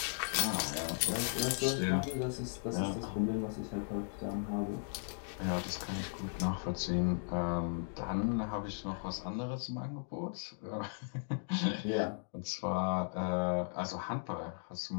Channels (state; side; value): silent; right; digital silence